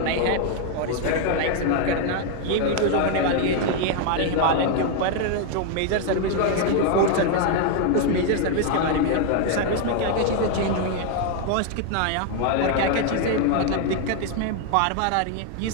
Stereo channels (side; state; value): both; different; correlation 0.00